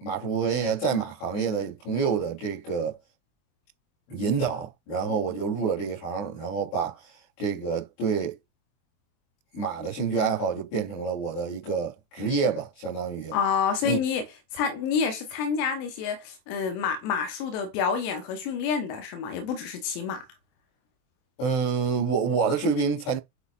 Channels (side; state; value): right; late; 23 ms